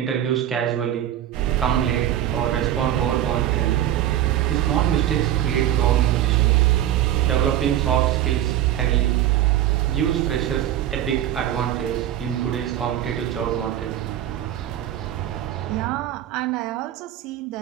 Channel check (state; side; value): quieter; left; 11.9 dB